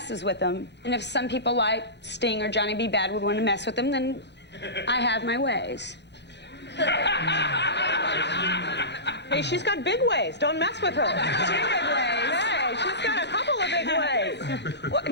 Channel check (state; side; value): late; right; 0.50 ms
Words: with them. And if some people like Sting or Johnny B. Bad would want to mess with them, then I have my ways. Hey, she's got big ways. Don't mess with her. 2 big ways. Hey, she's got a couple of big ways. Well,